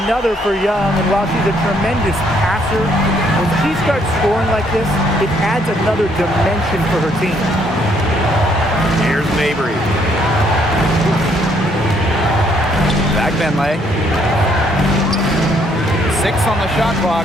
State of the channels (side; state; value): both; normal; correlation 0.68